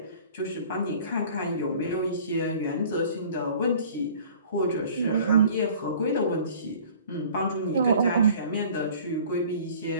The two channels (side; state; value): both; inverted; correlation -0.49